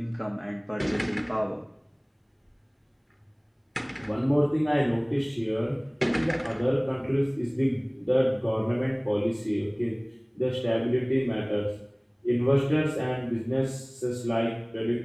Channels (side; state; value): both; identical; correlation 1.00